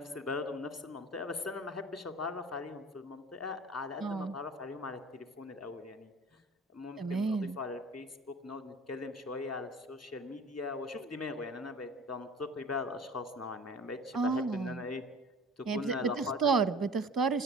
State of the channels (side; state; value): both; normal; correlation 0.42